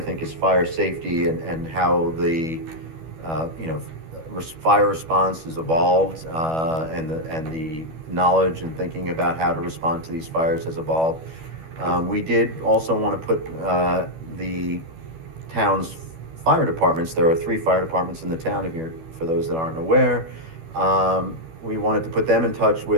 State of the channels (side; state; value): left; late; 12 ms